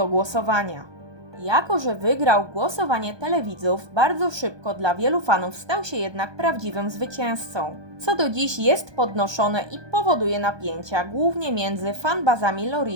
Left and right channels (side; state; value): left; late; 1.2 ms